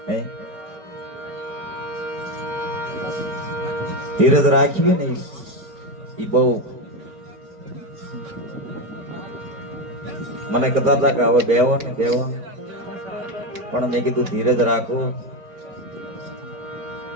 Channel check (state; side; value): late; left; 4.4 ms